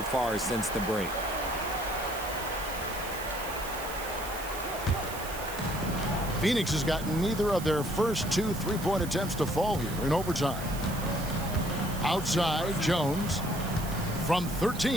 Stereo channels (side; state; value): right; noise; hiss, 12 dB below the sound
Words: far since the break. Phoenix has gotten neither of their first 2 3-point attempts to fall here in overtime. Outside, Jones. From